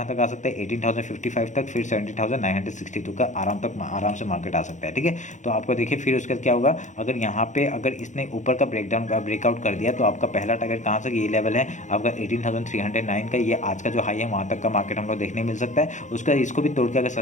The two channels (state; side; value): late; right; 0.35 ms